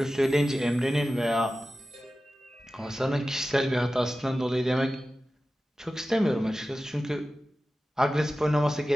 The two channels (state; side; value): normal; both; correlation 0.95